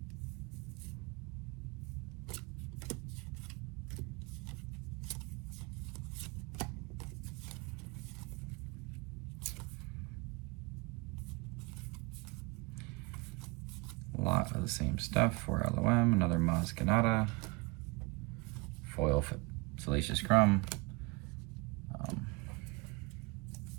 A lot of the same stuff for LOM. Another Maz Kanata. Foil Salacious Crumb.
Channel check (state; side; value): quieter; left; 26.6 dB